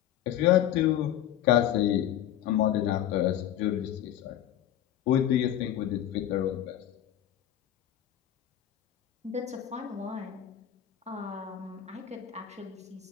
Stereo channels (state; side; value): quieter; right; 11.4 dB